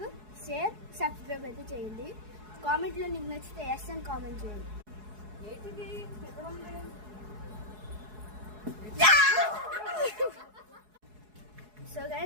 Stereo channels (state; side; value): late; left; 4.7 ms